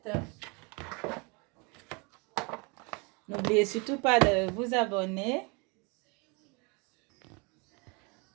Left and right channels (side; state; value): left; quieter; 30.8 dB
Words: N'oubliez surtout pas de vous abonner.